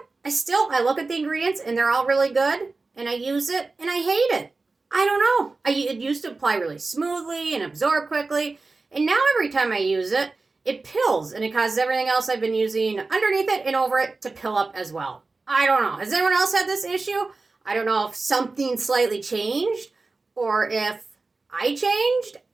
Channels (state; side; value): quieter; left; 3.7 dB